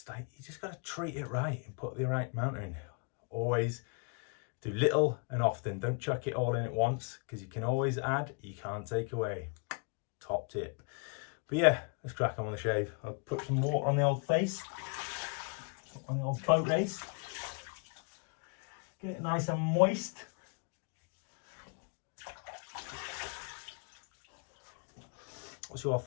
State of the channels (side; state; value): right; quieter; 36.1 dB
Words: like, you just got to treat it right and put the right amount in. Always do little and often. Don't chuck it all in at once, because you can always add, you can't take away. Top tip. But yeah, let's crack on with the shave. I'll put some water on the old face, on the old boat race. Get it nice and moist. What's your